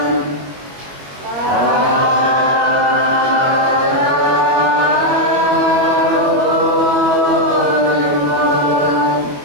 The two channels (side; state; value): left; late; 22 ms